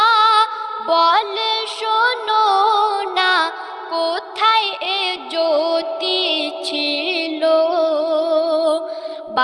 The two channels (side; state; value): both; identical; correlation 1.00